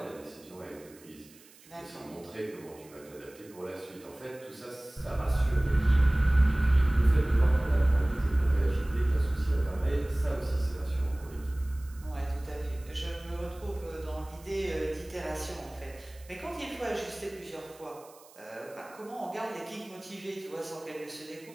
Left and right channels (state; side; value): noise; right; hiss, 24 dB below the sound